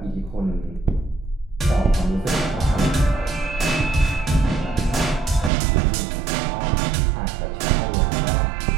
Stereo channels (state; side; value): drops out; left; at 5.5 s